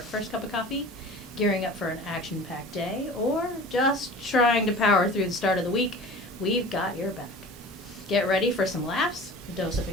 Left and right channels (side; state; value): both; normal; correlation 0.40